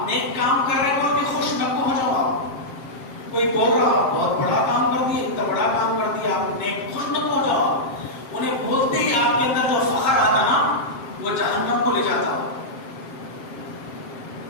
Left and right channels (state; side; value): late; right; 7.5 ms